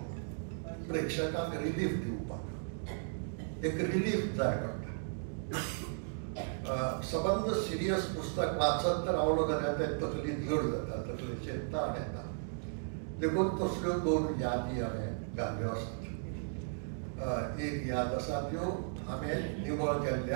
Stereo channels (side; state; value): left; silent; digital silence